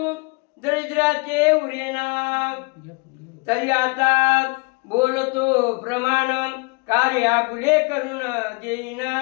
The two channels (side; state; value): right; quieter; 30.5 dB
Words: दरिद्राचे उरेना तरी आता बोलतो प्रमाण कार्य आपुले करून देईन